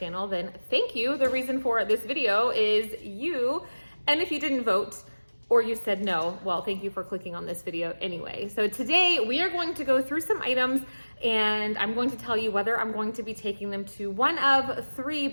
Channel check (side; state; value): both; inverted; correlation -1.00